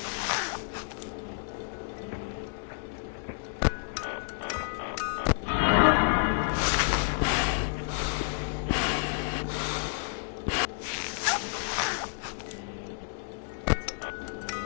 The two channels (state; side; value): silent; right; digital silence